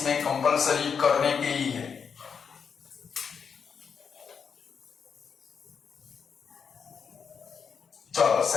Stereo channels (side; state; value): right; quieter; 6.4 dB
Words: में कंपलसरी करने के ही है। चलो